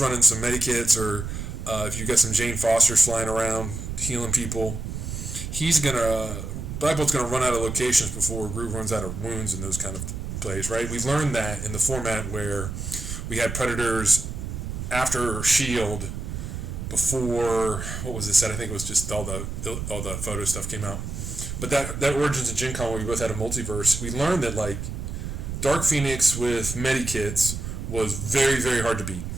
some medikits or if you got some Jane Fosters flying around healing people, Black Bolt's going to run out of locations before Groot runs out of wounds and those kind of plays, right? We've learned that in the format where we had Predators after Shield before, what was this set? I think it was just all the photo stuff came out. But that Origins and Gencon, where we both had a multiverse, we learned that like Dark Phoenix with medikits was very, very hard to beat.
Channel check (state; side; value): noise; right; rumble, 6 dB below the sound